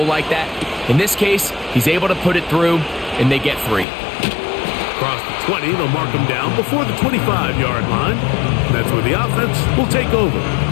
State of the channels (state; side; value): drops out; right; at 3.9 s